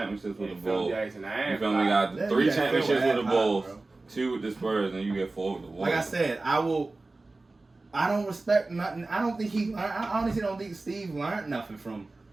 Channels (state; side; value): quieter; left; 3.3 dB